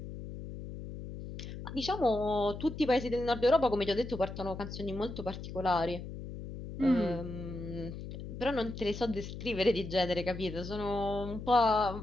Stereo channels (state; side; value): noise; left; hum, 9 dB below the sound